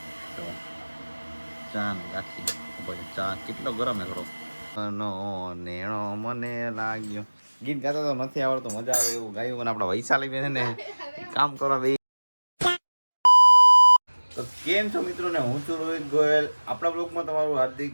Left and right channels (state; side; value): inverted; both; correlation -1.00